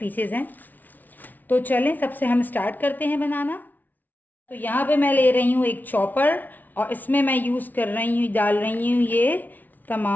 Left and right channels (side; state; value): right; late; 0.081 ms